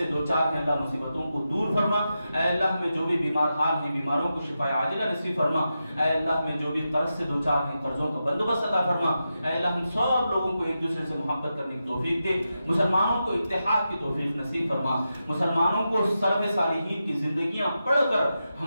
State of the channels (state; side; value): inverted; both; correlation -0.89